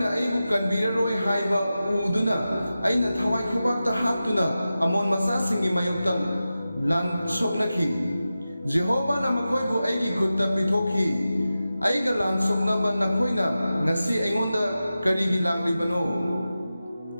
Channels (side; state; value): both; inverted; correlation -0.94